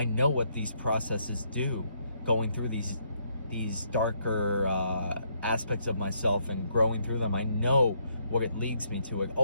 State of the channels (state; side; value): inverted; both; correlation -0.73